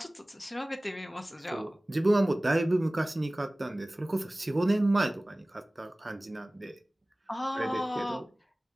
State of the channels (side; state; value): both; normal; correlation 0.98